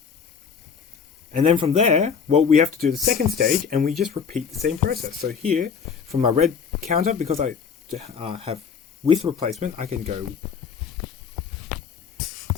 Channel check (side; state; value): right; quieter; 6.5 dB